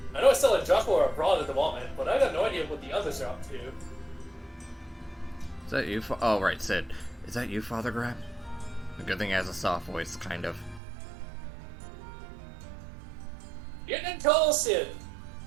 I know it's still in Joshua or abroad at the moment, but I got no idea what the others are up to. Is that you? Oh, right, Sid. Is that you, Father Graham? A good thing he has a soft voice, kind of. Getting in tall, Sid!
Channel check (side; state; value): left; drops out; at 10.8 s